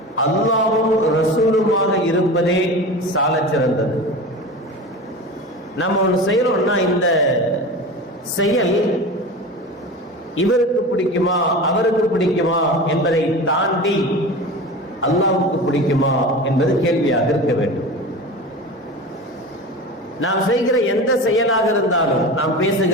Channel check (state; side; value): normal; both; correlation 0.31